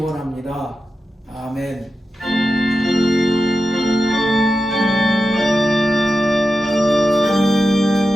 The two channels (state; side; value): normal; both; correlation 0.91